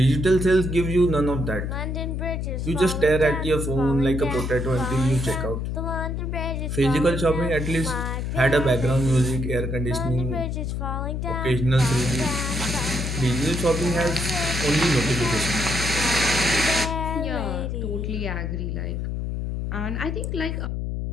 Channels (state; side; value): noise; left; hum, 2 dB below the sound